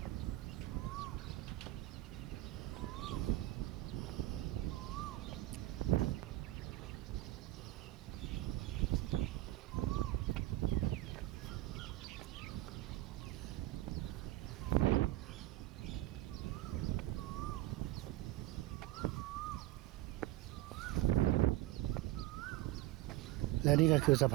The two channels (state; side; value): quieter; left; 15.9 dB